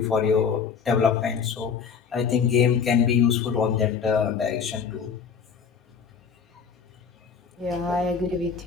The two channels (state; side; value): quieter; right; 6.4 dB